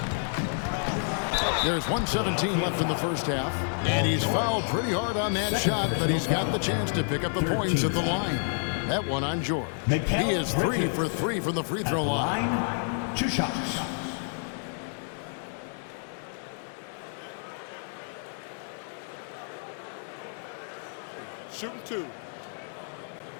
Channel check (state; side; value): silent; right; 58 dB below the other